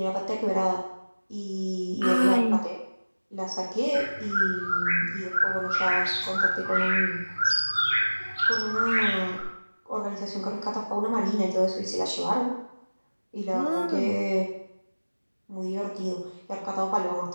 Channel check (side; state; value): both; inverted; correlation -1.00